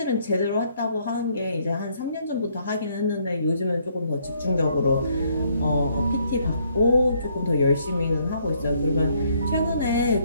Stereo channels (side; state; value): both; inverted; correlation -0.69